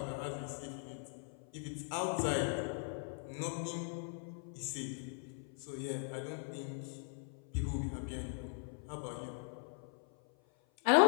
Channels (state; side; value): silent; right; 51 dB below the other